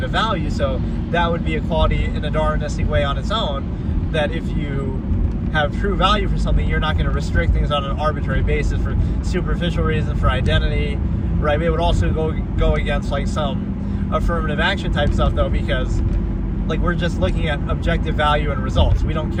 of value. So that would be equality in a Darwinistic way on its own, that if you have true value for something, you're not going to restrict things on an arbitrary basis for superficial reasons, for identity, right? It would also go against like some affirmative action type stuff, though, because like, we're just looking at objective value and results. We don't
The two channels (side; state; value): both; identical; correlation 1.00